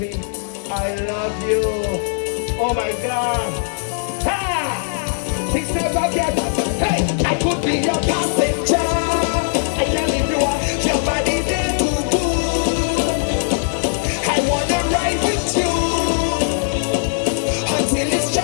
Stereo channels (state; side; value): silent; right; 56 dB below the other